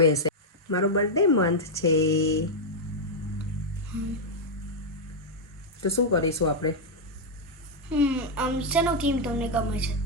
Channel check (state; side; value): normal; both; correlation -0.02